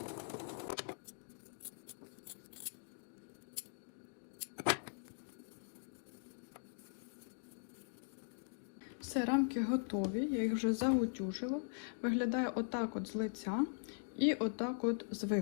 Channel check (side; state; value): right; silent; digital silence